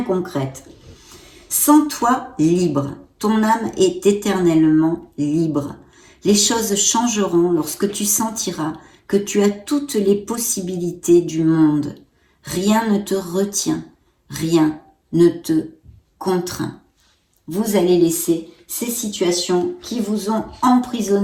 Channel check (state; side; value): identical; both; correlation 1.00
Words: concrète. Sens-toi libre. Ton âme est éternellement libre. Les choses changeront lorsque tu sentiras que tu as toutes les possibilités du monde. Rien ne te retient, rien ne te contraint. Vous allez laisser ces situations qui vous ont